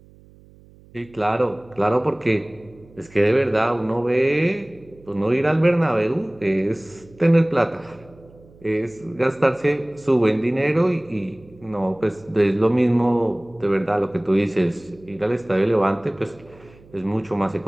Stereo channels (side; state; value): right; noise; hum, 25 dB below the sound